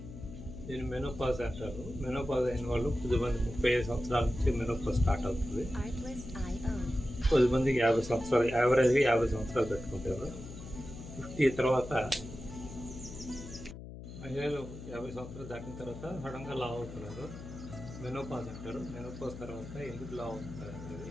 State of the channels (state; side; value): noise; left; hum, 12 dB below the sound